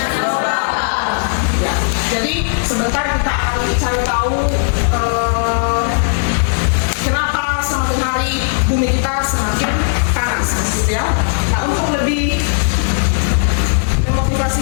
global. Ya. Jadi sebentar kita akan cari tahu kenapa semakin hari bumi kita semakin panas, gitu ya. Nah, untuk lebih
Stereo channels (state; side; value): silent; right; 67 dB below the other